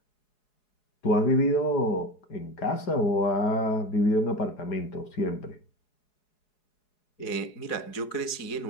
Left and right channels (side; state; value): right; late; 4.8 ms